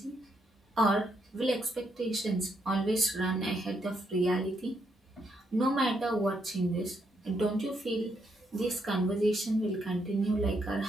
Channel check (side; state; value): both; normal; correlation 0.77